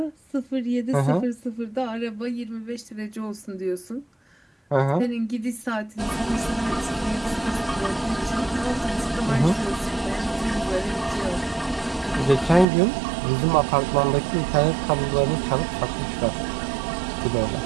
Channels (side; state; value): left; drops out; at 12.7 s